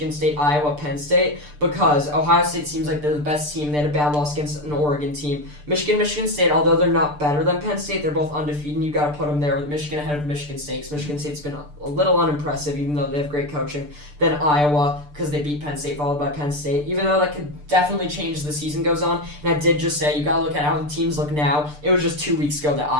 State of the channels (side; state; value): left; late; 6.8 ms